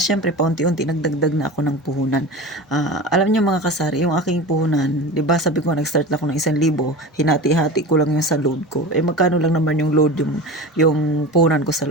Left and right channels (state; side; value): normal; both; correlation 0.31